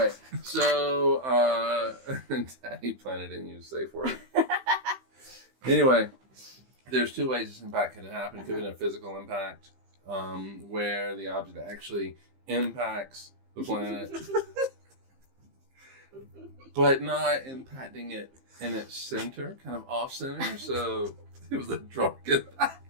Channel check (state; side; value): late; left; 25 ms